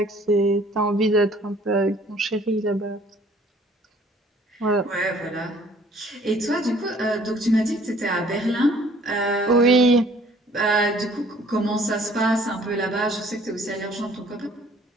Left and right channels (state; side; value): normal; both; correlation 0.57